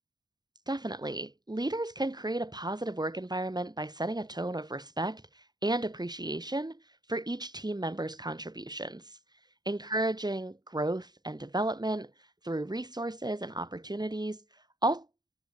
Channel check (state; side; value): late; left; 0.20 ms